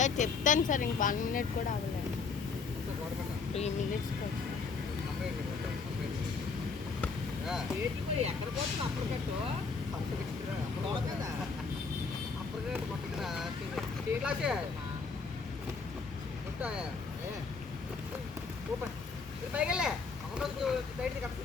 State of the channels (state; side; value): quieter; right; 4.8 dB